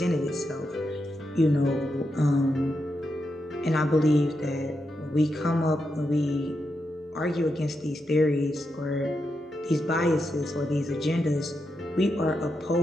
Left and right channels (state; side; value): normal; both; correlation 0.85